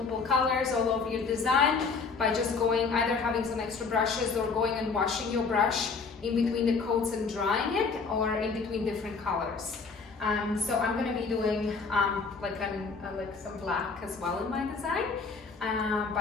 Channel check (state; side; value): quieter; right; 4.8 dB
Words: colors all over your design by just going either having some extra brushes or going and washing your brush in between the coats and drying it, or in between different colors. So I'm going to be doing like some black as well in my design.